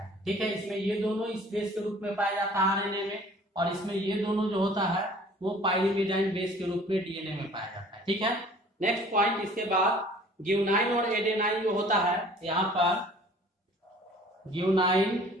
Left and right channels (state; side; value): normal; both; correlation 0.50